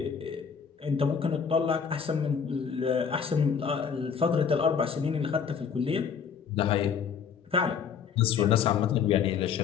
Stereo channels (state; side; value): quieter; right; 6.8 dB